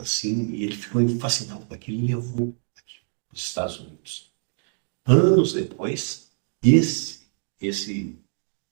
assim, e ele ficou fascinado com aquilo e levou aquilo para os Estados Unidos. Anos depois, esse, esse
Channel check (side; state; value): left; silent; digital silence